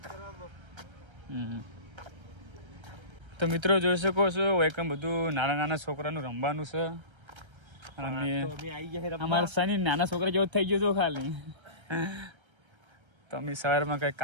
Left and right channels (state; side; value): late; left; 1.3 ms